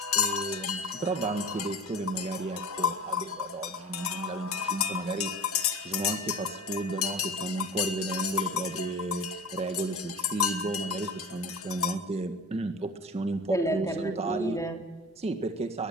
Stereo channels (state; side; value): normal; both; correlation 0.36